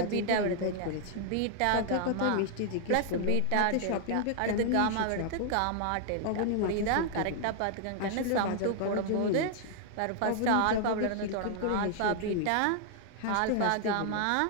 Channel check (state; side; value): different; both; correlation 0.00